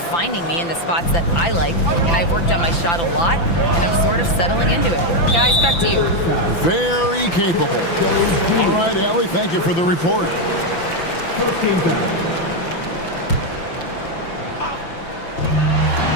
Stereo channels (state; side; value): late; right; 5.9 ms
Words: me in the spots that I like, and I've worked on my shot a lot, and I'm sort of settling into it. Guys, back to you. Very capable. All right, Allie, thank you for the report.